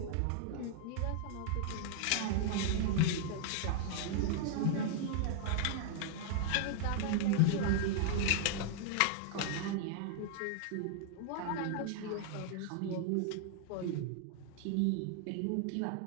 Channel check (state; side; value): different; both; correlation -0.01